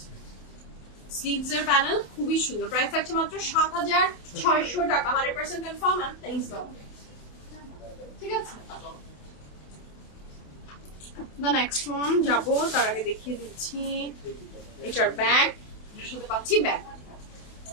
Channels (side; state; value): right; late; 28 ms